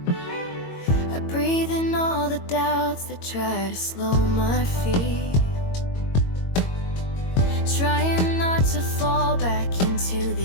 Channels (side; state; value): right; late; 22 ms